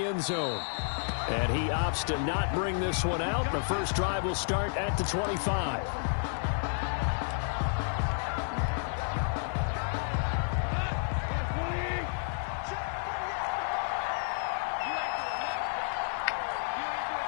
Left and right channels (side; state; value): right; silent; 57 dB below the other